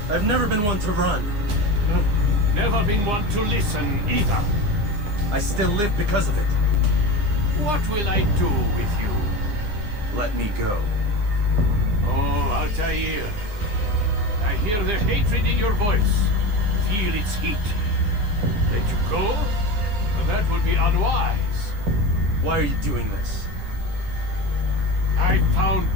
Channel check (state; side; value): late; left; 9.7 ms